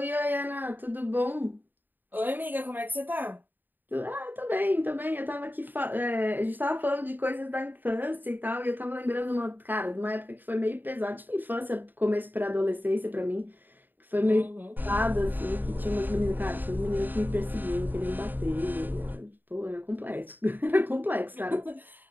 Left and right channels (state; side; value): late; left; 0.090 ms